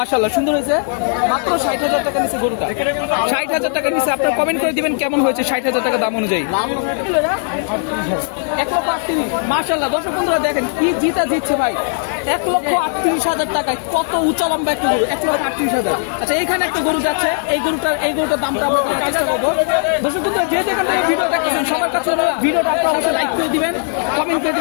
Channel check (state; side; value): silent; right; 61 dB below the other